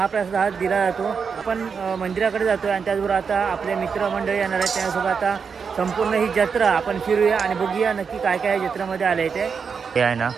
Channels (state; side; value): quieter; left; 6.0 dB